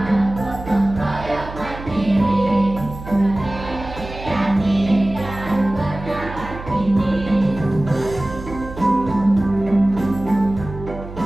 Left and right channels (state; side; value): noise; right; hum, 12 dB below the sound